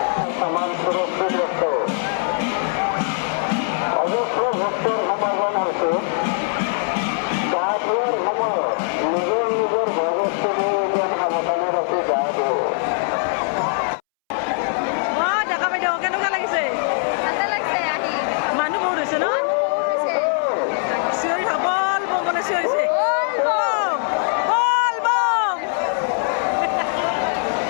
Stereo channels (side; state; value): right; silent; 65 dB below the other